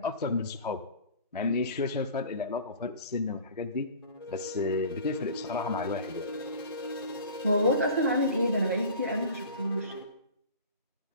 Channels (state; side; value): inverted; both; correlation -0.41